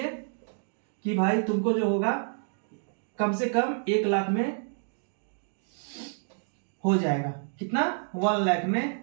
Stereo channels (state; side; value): silent; left; 59 dB below the other